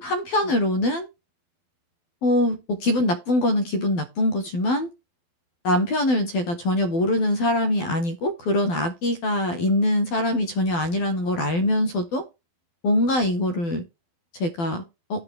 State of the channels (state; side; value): late; right; 12 ms